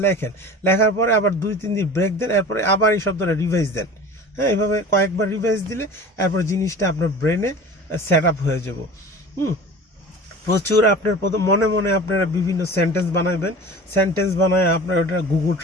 লেখেন, লেখার পরে আবার 2-3 দিন ব্রেক দেন, এরপরে আবার এই শব্দটা রিভাইজ দেন। হ্যাঁ, এইভাবে কয়েকবার রিভাইজ দিলে এরপর জিনিসটা আপনার ব্রেনে সেট আপ হয়ে যাব। প্রচুর আপনার মনে মনে আপনারা বিভিন্ন সেন্টেন্স বানাবেন, সেন্টেন্স বানায় আপনার ওটা গুগল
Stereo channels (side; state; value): both; normal; correlation 0.38